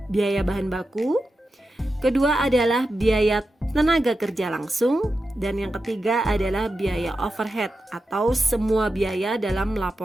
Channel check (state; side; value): normal; both; correlation 0.90